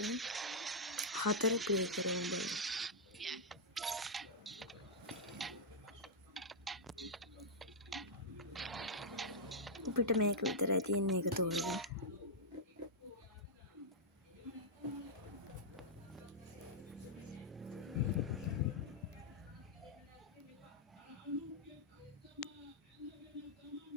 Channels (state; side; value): normal; both; correlation -0.07